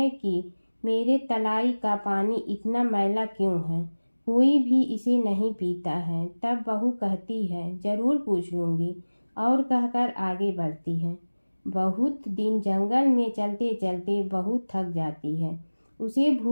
की मेरे तलाई का पानी इतना मैला क्यों है, कोई भी इसे नहीं पीता है। तब बहू कहती है जरूर पूछ लूंगी और कहकर आगे बढ़ती है। बहुत दिन जंगल में चलते चलते बहू थक जाती है। उसे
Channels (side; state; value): both; inverted; correlation -1.00